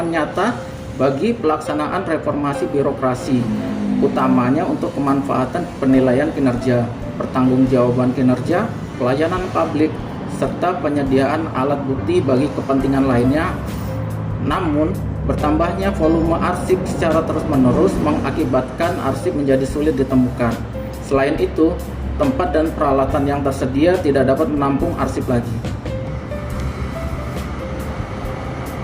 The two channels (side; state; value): both; identical; correlation 1.00